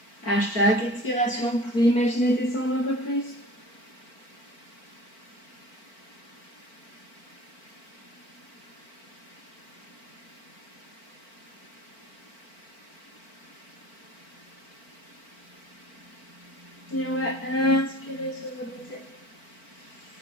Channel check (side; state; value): right; late; 4.5 ms